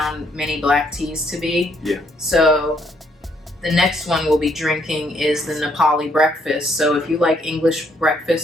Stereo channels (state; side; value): normal; both; correlation 0.70